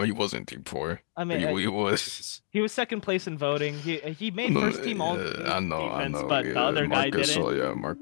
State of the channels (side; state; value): right; silent; digital silence